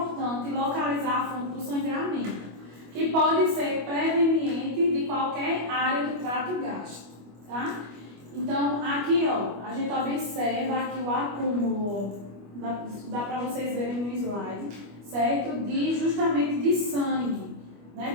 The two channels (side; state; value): left; late; 25 ms